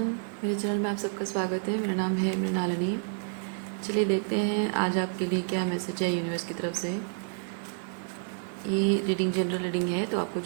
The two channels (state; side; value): silent; left; digital silence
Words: मेरे channel में आप सबका स्वागत है। मेरा नाम है मृणालिनी। चलिए देखते हैं आज आपके लिए क्या मैसेज है यूनिवर्स की तरफ से। ये रीडिंग जनरल रीडिंग है, तो आपको